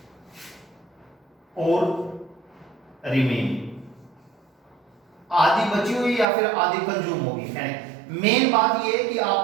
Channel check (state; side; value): drops out; left; at 6.2 s